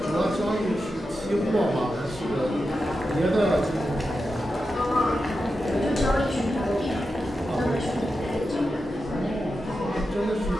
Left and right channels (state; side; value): normal; both; correlation 0.90